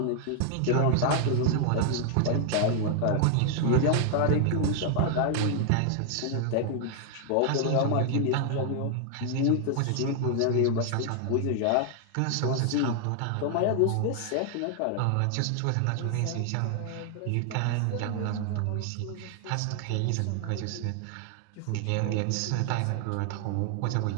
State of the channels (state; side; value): different; both; correlation 0.00